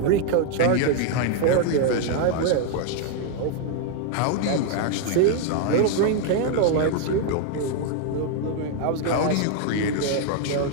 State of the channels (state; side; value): different; both; correlation 0.00